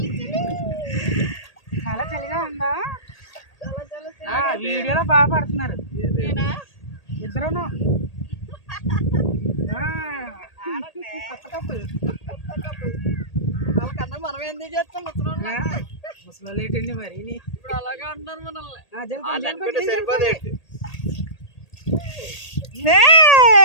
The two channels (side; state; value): right; late; 1.8 ms